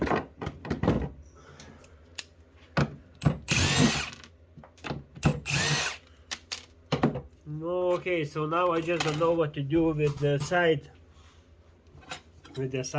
Okay, so now I just don't know what to do with the side, with the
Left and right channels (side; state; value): both; identical; correlation 1.00